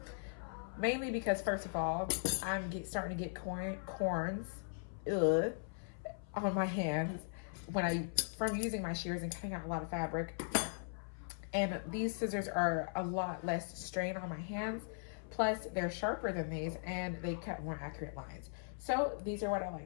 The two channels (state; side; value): silent; right; 52 dB below the other